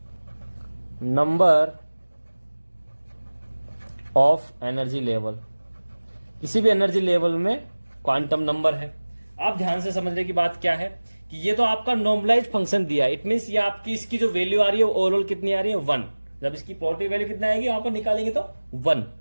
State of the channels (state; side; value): inverted; both; correlation -1.00